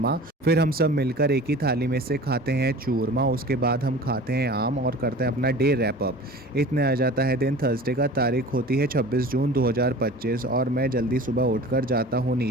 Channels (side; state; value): both; normal; correlation 0.40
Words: फिर हम सब मिलकर एक ही थाली में से खाते हैं चूरमा। उसके बाद हम खाते हैं आम और करते हैं अपना डे रैप अप। इतने आ जाता है दिन थर्सडे का, तारीख होती है 26 जून 2025 और मैं जल्दी सुबह उठकर जाता हूँ